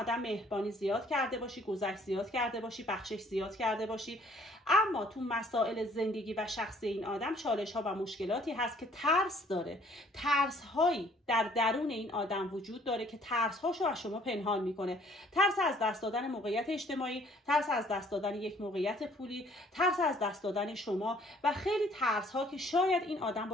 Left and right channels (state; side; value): normal; both; correlation 0.59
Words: مهربانی زیاد کرده باشی، گذشت زیاد کرده باشی، بخشش زیاد کرده باشی، اما تو مسائل زندگی و شخصی این آدم چالش ها و مشکلاتی هست که ترس داره. ترس هایی در درون این آدم وجود داره که ترس هاشو از شما پنهان میکنه. ترس از دست دادن موقعیت اجتماعی، ترس از دست دادن یک موقعیت پولی، ترس از دست دادن شما و خیلی ترس ها که شاید این آدم